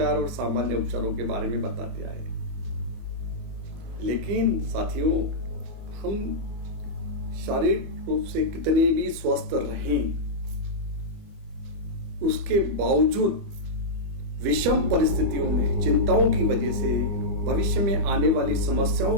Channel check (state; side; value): late; left; 25 ms